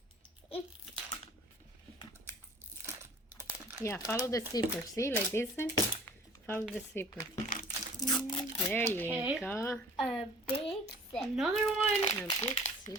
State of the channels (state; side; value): normal; both; correlation 0.49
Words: Yeah, follow the zipper. See, like this one? Follow the zipper. There Okay. you go. A big zipper. Another one. A big